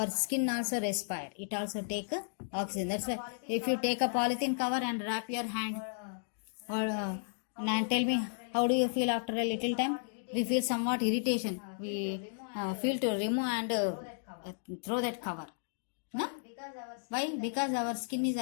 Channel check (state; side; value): silent; right; digital silence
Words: skin also respire. It also take oxygen. That's why if you take a polythene cover and wrap your hand, or and tell me, how do you feel after a little time? We feel somewhat irritation. We feel to remove and throw that cover. No? Why? Because our skin is